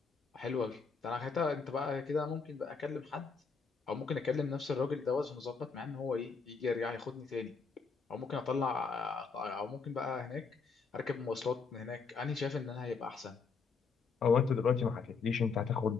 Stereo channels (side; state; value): right; quieter; 5.1 dB